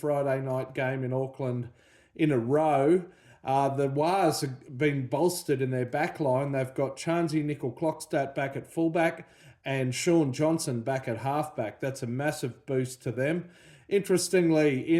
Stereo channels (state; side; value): identical; both; correlation 1.00